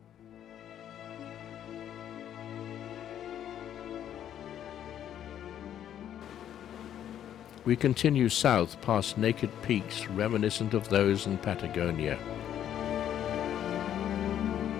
We continue south past naked peaks reminiscent of those in Patagonia.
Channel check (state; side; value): quieter; right; 10.4 dB